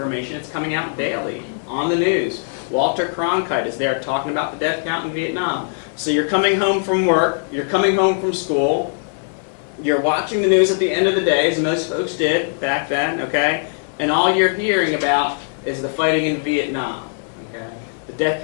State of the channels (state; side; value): silent; right; 66 dB below the other